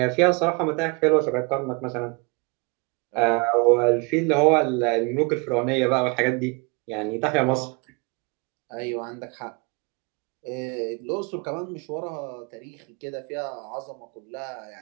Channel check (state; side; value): quieter; left; 30.7 dB